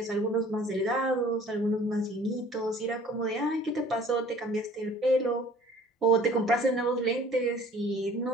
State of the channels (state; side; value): normal; both; correlation 0.51